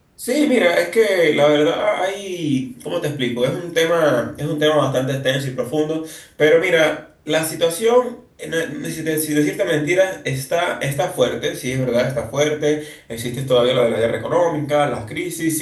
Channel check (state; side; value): identical; both; correlation 1.00